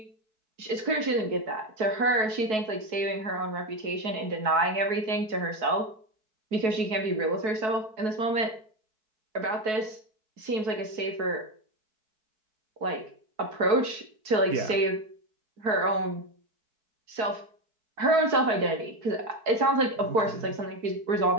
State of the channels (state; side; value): late; left; 4.7 ms